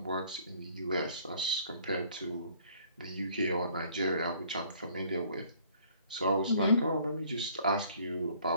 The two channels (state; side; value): inverted; both; correlation -0.58